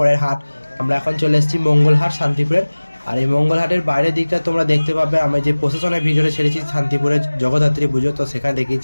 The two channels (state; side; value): inverted; both; correlation -1.00